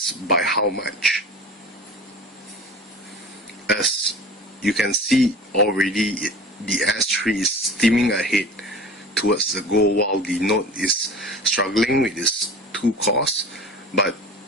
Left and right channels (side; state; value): both; normal; correlation 0.38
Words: by how much? As you can see already, the S3 is steaming ahead towards the goal, while the Note is struggling with its two cores. But